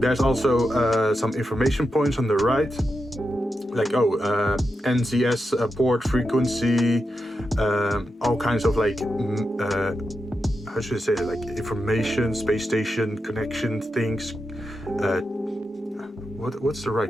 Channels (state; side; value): normal; both; correlation 0.88